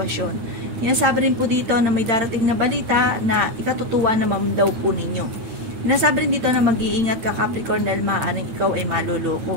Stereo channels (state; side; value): late; left; 9.2 ms